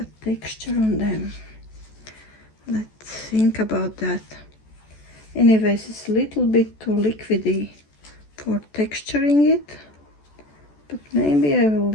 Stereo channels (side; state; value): right; late; 14 ms